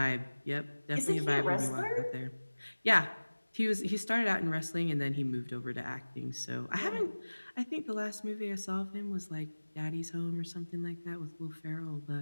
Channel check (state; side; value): inverted; both; correlation -1.00